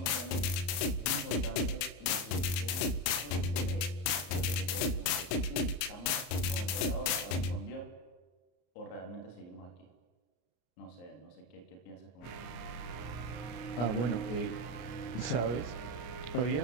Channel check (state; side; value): late; right; 34 ms